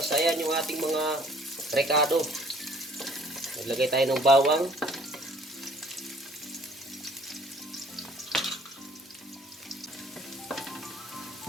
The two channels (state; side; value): normal; both; correlation 0.56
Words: yan yung ating mga rekado. Naglagay tayo ng bawang.